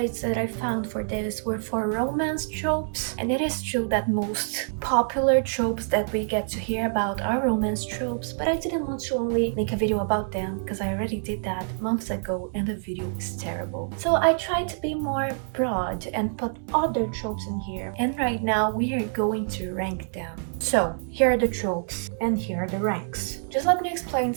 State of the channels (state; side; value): silent; left; 61 dB below the other